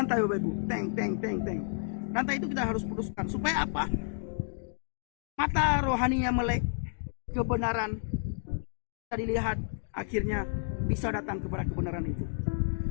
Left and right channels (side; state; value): right; silent; digital silence